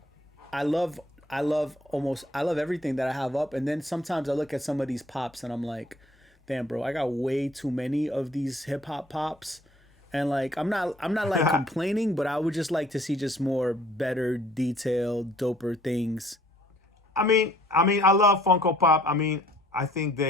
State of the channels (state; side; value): normal; both; correlation 0.58